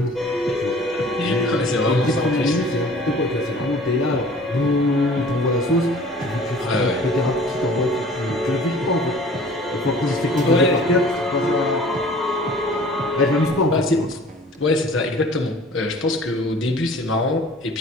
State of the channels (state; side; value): normal; both; correlation 0.48